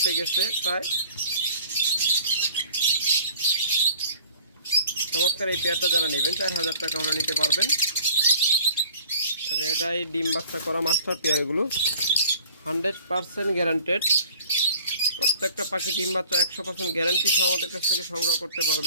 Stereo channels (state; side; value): inverted; both; correlation -0.49